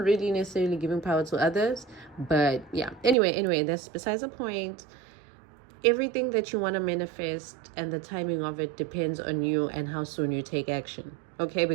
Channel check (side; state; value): left; drops out; at 3.2 s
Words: necessarily giving power to others, but yeah. Anyway, that's besides the point. Everything that you want to manifest and the timing of it depends on you and how soon you take action. Okay,